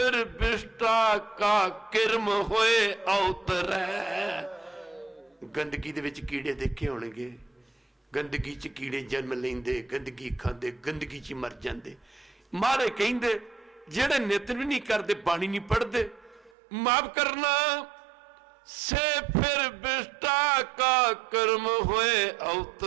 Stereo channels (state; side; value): drops out; left; at 16.5 s